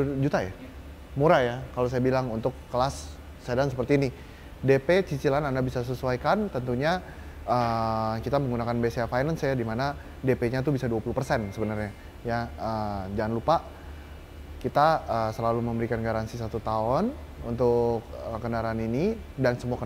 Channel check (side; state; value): both; identical; correlation 1.00